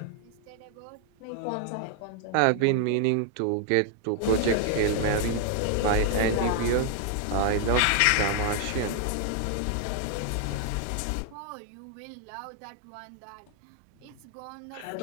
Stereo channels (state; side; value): different; both; correlation 0.00